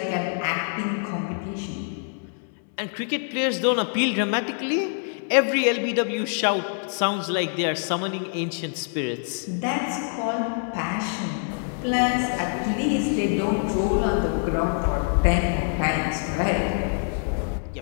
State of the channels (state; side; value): silent; right; 62 dB below the other